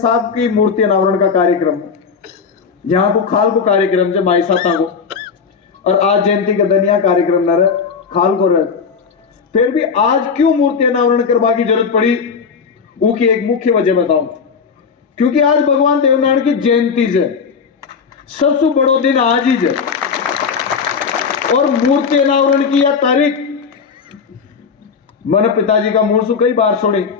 की मूर्ति अनावरण का कार्यक्रम, यहाँ को खाल को कार्यक्रम जब माई साता को, और आज जयंती का दनिया कार्यक्रम न रहे खाल को रहे, फिर भी आज क्यों मूर्ति अनावरण करवा की जरूरत पड़ी, वो की एक मुख्य वजह बताऊं। क्योंकि आज भगवान देवनारायण की जयंती है, सबसे बड़ो दिन आज ही है, और मूर्ति अनावरण की यह तारीख मैंने पिताजी का मुंह से कई बार सुनी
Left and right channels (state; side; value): quieter; right; 5.8 dB